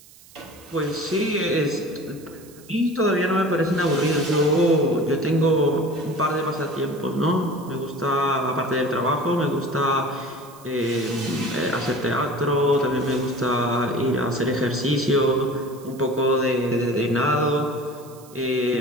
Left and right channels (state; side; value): noise; right; hiss, 23 dB below the sound